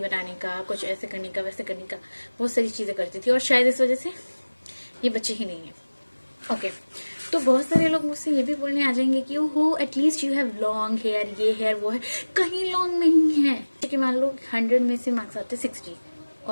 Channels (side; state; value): both; inverted; correlation -1.00